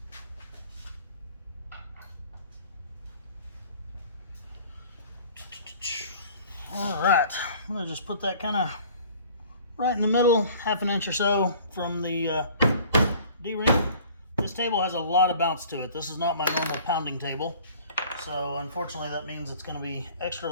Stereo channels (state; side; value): inverted; both; correlation -0.50